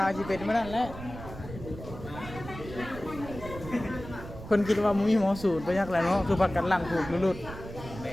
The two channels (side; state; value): right; noise; rumble, 12 dB below the sound